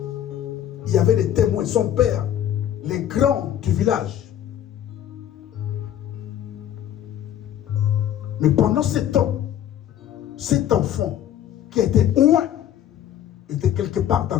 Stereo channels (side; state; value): right; quieter; 10.8 dB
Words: Il y avait des témoins. Son père, les grands du village. Mais pendant ce temps, cet enfant qui était loin était quelque part